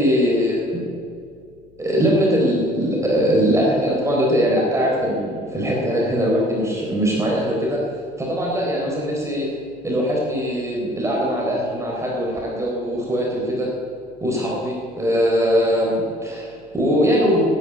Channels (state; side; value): noise; left; hum, 29 dB below the sound